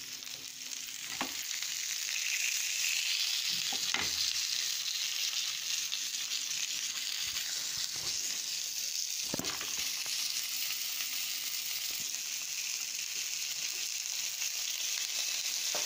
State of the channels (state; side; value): identical; both; correlation 1.00